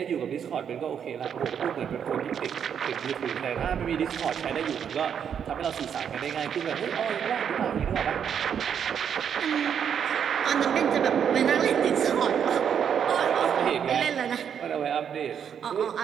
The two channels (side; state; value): left; quieter; 8.0 dB